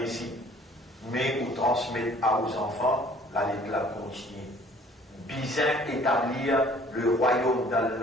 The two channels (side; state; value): both; normal; correlation 0.54